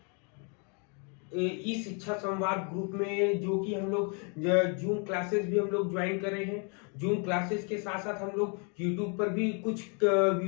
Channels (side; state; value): right; quieter; 37.1 dB